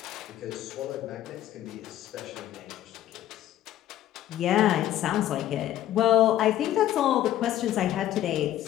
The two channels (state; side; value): quieter; right; 12.9 dB